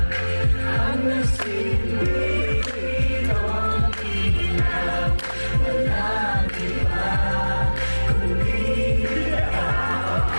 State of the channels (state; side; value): inverted; both; correlation -1.00